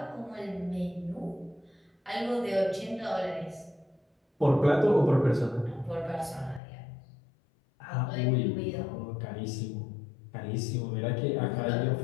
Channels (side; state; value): right; drops out; at 6.6 s